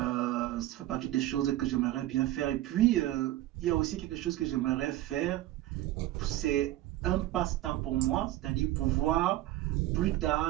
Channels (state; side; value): quieter; left; 15.1 dB